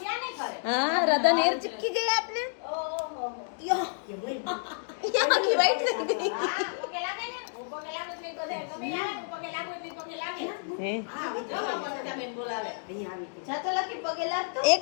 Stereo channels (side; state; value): right; silent; digital silence